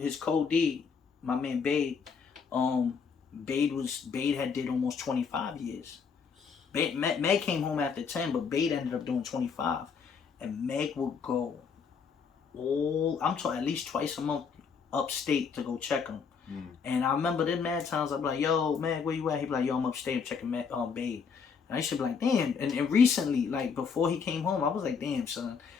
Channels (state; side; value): quieter; right; 6.0 dB